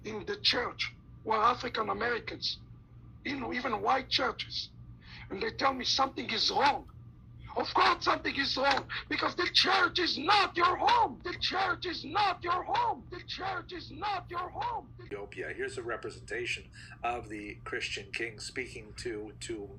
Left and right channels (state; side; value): identical; both; correlation 1.00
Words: in the church who are African Americans, even white churches, and they tell me something is wrong. Of course something is wrong, because the church is not your home. The church is not your home. The church is not your home. Ethiopia. Here's a representation of the Christian king speaking to